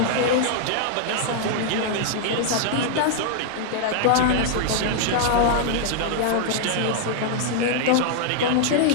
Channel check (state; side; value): different; both; correlation -0.01